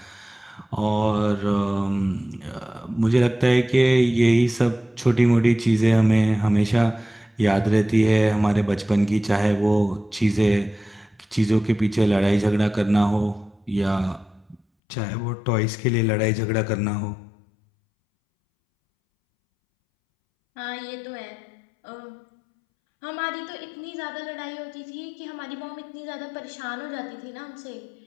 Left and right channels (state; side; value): drops out; right; at 14.6 s